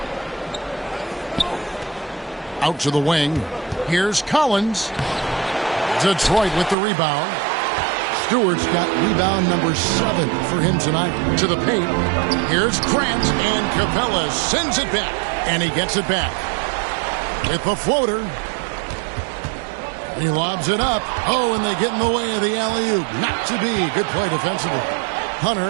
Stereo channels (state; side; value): drops out; left; at 6.8 s